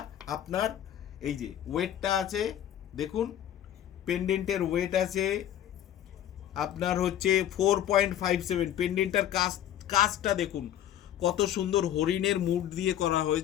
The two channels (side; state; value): right; quieter; 11.1 dB